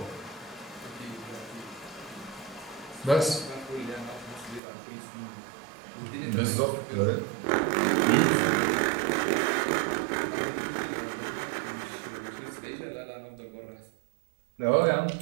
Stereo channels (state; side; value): drops out; left; at 4.6 s